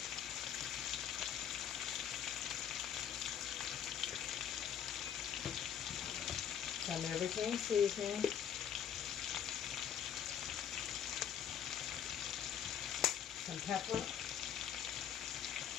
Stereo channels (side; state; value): right; quieter; 8.9 dB